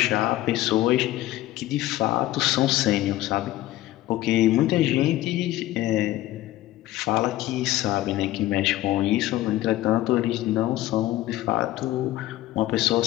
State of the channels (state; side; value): quieter; right; 15.5 dB